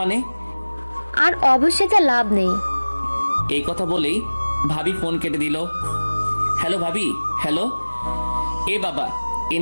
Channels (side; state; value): both; inverted; correlation -1.00